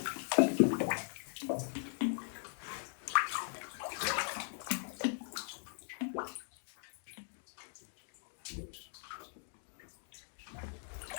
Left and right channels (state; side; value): silent; right; digital silence